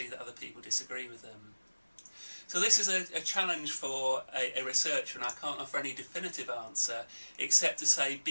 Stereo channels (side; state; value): both; inverted; correlation -1.00